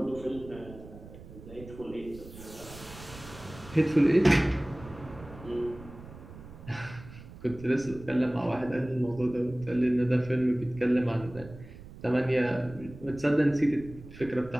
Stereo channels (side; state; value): right; noise; rumble, 16 dB below the sound